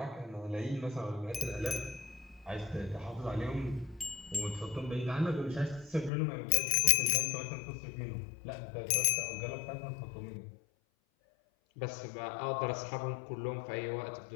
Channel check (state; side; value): drops out; right; at 6.1 s